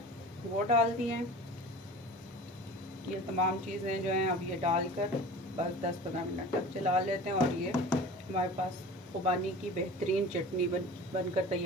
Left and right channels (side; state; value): both; normal; correlation 0.38